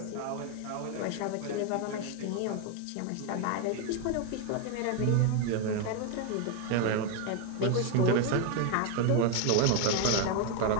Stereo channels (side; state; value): both; different; correlation 0.01